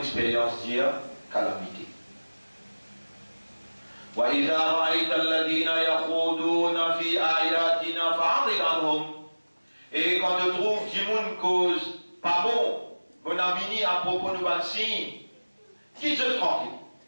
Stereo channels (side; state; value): both; inverted; correlation -1.00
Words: dire calamité. وإذا رأيت الذين يخوضون في آياتنا فأعرض عنهم. Et quand tu trouves qu'il y a une cause pas bon, bon ami à propos de nos signes, quitte-je tranquille.